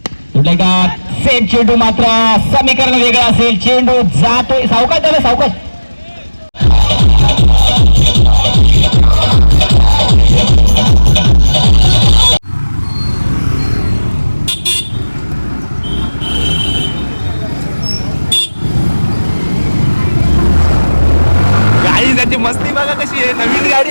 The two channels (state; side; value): inverted; both; correlation -1.00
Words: सेट चेंडू मात्र समीकरण वेगळं असेल. चेंडू जातोय सावकाश त्याला सावकाश. गाडी त्याची मस्ती बघा कशी आहे. नवीन गाडी